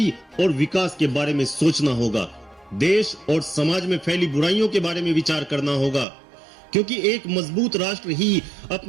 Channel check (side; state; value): left; drops out; at 6.1 s